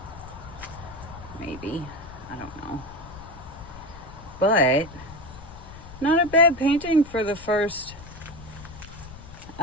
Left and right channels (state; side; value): noise; left; rumble, 16 dB below the sound